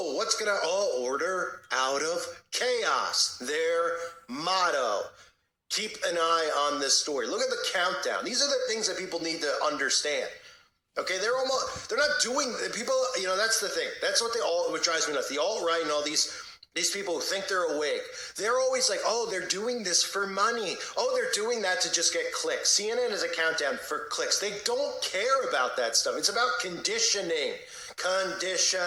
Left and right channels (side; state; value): both; identical; correlation 1.00